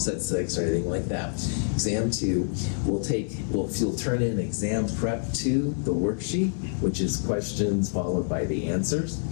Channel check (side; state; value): right; silent; digital silence